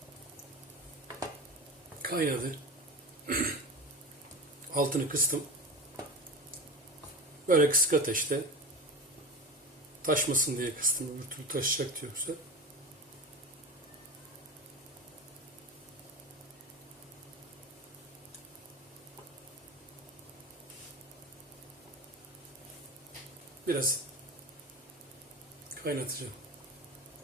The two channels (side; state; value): both; normal; correlation 0.28